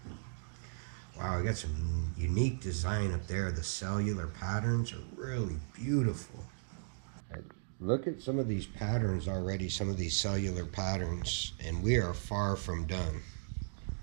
Wow, I got some unique design up there. The cellular patterns are really beautiful. Look at some of these patterns already, some of these cellular patterns, and we are far from done.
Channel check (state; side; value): silent; left; digital silence